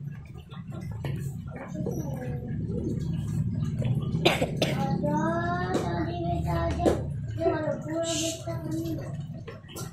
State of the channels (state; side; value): identical; both; correlation 1.00